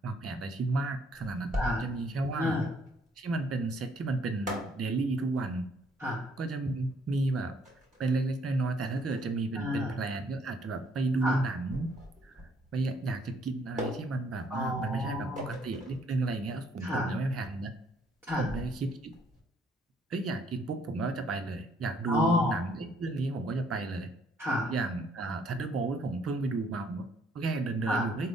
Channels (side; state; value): both; normal; correlation 0.66